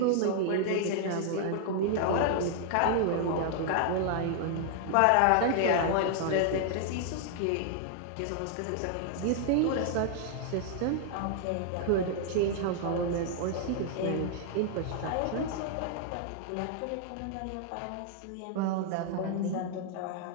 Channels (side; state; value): both; different; correlation 0.00